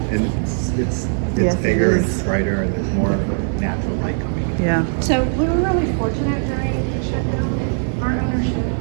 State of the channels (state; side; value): silent; left; digital silence